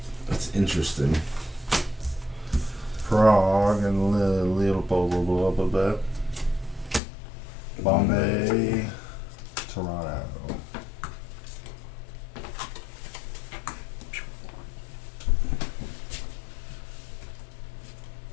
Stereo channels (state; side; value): drops out; right; at 7.0 s